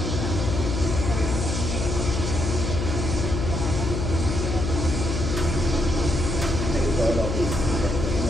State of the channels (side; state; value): left; noise; hum, 1 dB below the sound